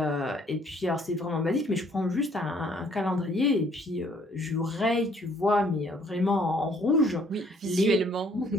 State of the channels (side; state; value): both; normal; correlation 0.63